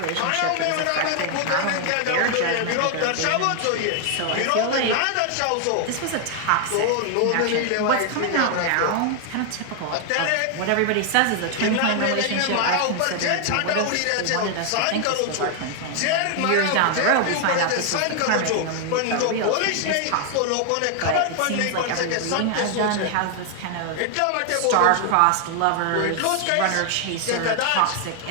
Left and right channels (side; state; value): both; different; correlation 0.00